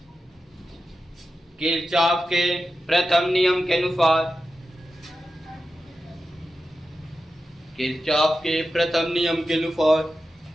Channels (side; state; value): both; normal; correlation 0.91